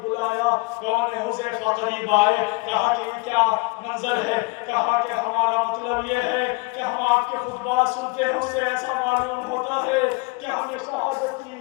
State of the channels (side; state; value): right; quieter; 26.4 dB